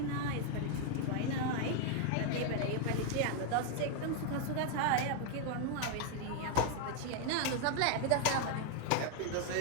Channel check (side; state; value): both; different; correlation 0.00